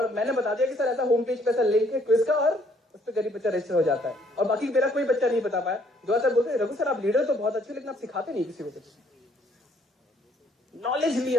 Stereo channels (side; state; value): both; normal; correlation 0.65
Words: मैंने बता दिया कि सर ऐसा होम पेज पे ऐसा लिंक है क्विज का, और उस पर गरीब बच्चा रजिस्टर हो जाता है, और बाकी मेरा कोई बच्चा नहीं बता पाया। दुआ सर बोलते रघु सर आप लीडर तो बहुत अच्छे, लेकिन आप सिखाते नहीं किसी को कुछ। नॉलेज ली